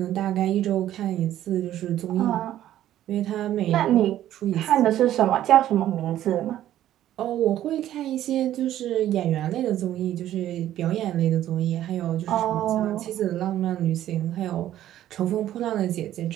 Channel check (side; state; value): left; quieter; 12.5 dB